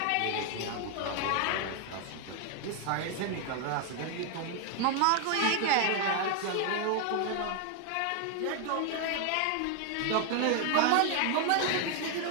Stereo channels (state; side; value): different; both; correlation 0.01